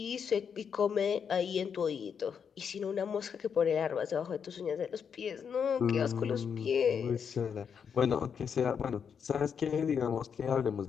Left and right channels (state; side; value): quieter; right; 7.0 dB